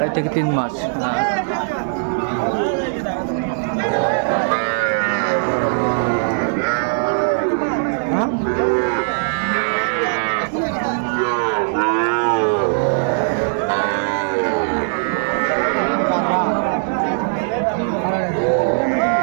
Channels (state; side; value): silent; left; digital silence